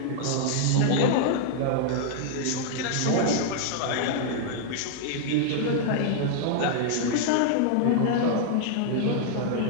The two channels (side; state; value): both; different; correlation 0.00